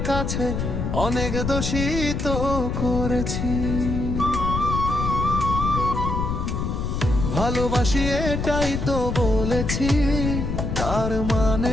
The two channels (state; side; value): noise; left; rumble, 2 dB below the sound